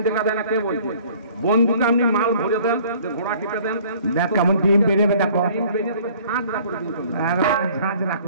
দেখা যায় না কে বলছে? বন্ধুকে আপনি মাল ভরে দেন, ঘোড়া টিপে দেন, দেখ কেমন ডিম বেরোবে। দেখো ডিম বেরিয়ে ঝাঁঝরা করে দিন, ঝাঁঝরা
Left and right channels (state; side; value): inverted; both; correlation -0.54